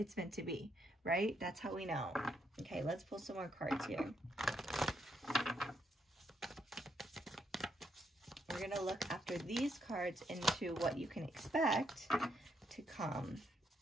meant to be, right? That's how we know. Okay. Let's pull some more cards here. We're going to look after these cards into what you can expect to come.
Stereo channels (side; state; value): both; normal; correlation 0.76